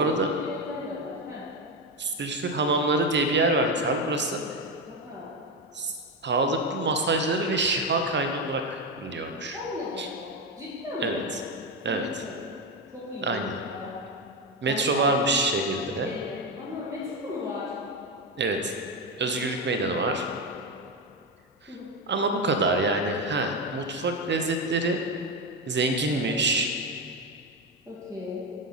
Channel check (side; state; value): both; normal; correlation 0.11